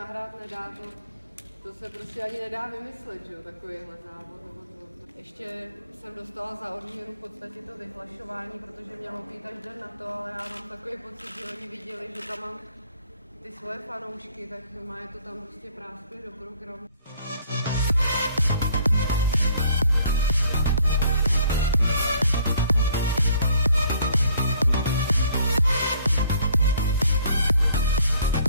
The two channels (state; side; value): inverted; both; correlation -0.60